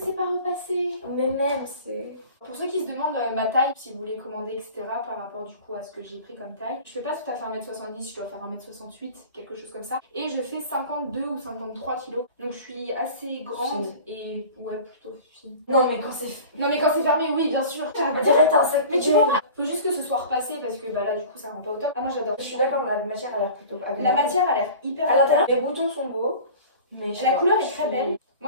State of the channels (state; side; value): inverted; both; correlation -0.40